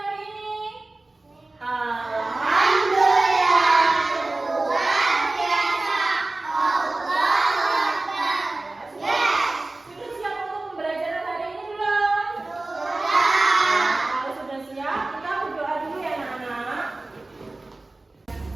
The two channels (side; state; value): left; quieter; 3.0 dB